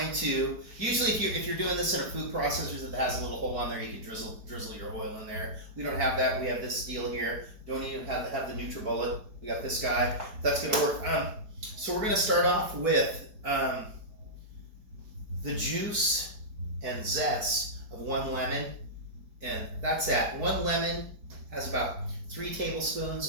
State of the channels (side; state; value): left; late; 4.6 ms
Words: to, usually if you're doing this in a food processor that has a little hole on there, you can drizzle your oil in there. We don't have that. We have this deal here. Don't even have the NutriBullet. We got this guy. That's going to work. So we're going to start off with the juice and zest of 1 lemon. And that's that. 1 lemon has about 3